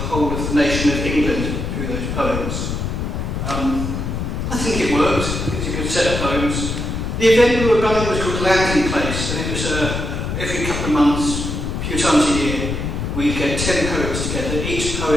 of the nation of England through those poems. I think it worked. It's a good set of poems. The event we were running was called Landing Place, and it was every couple of months, a few times a year, we'd get 10 poets together. Each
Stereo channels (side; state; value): left; noise; rumble, 3 dB below the sound